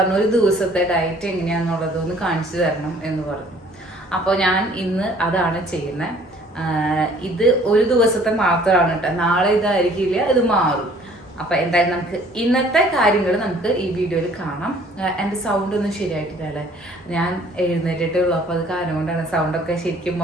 ഒരു ദിവസത്തെ ഡയറ്റ് എങ്ങനെയാണെന്നുള്ളതൊന്ന് കാണിച്ചു തരണം എന്ന് പറഞ്ഞു. അപ്പോൾ ഞാൻ ഇന്ന് അതാണ് ചെയ്യുന്നത്. ഇത് ഒരു ദിവസത്തെ മാത്രമാണ് കേട്ടോ, നാളെ ഇതായിരിക്കില്ല, ഇത് മാറും. അപ്പൊ എന്തായാലും നമുക്ക് ഇന്നത്തെ കാര്യങ്ങൾ നമുക്ക് ഈ വീഡിയോയിൽ കാണാം. എൻ്റെ സൗണ്ട് ഒന്നും ശരിയായിട്ടില്ല അല്ലേ, ഞാൻ എഴുന്നേറ്റിട്ടേ ഉള്ളൂ, അപ്പൊ അത് കാരണം കൊണ്ടാണ് സൗണ്ടൊക്കെ ശരിക്കും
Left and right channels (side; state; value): both; normal; correlation 0.56